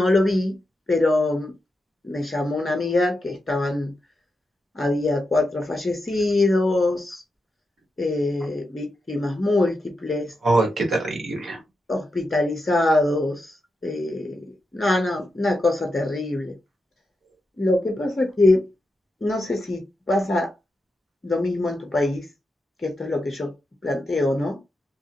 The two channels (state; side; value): normal; both; correlation 0.87